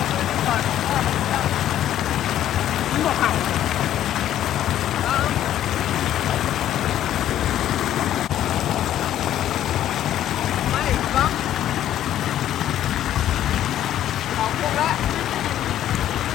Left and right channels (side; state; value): right; quieter; 11.8 dB